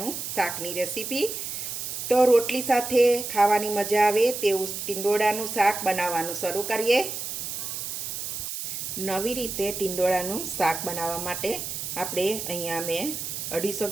શાકની રેસીપી. તો રોટલી સાથે ખાવાની મજા આવે તેવું ટીંડોળાનું શાક બનાવવાનું શરૂ કરીએ. નવી રીતે ટીંડોળાનું શાક બનાવવા માટે આપણે અહીંયા મેં 250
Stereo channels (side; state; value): right; noise; hiss, 5 dB below the sound